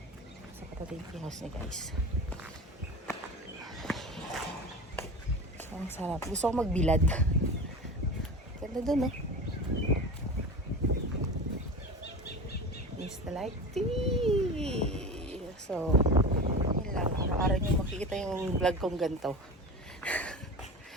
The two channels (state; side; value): normal; both; correlation 0.31